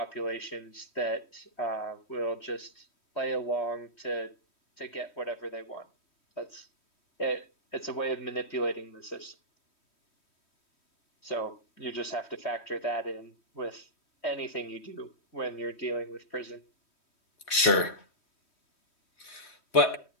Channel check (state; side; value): late; right; 3.1 ms